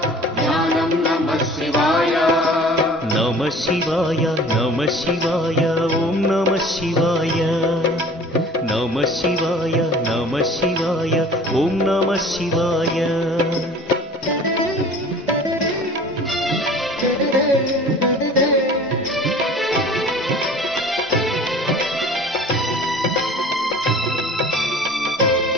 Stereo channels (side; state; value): both; normal; correlation 0.46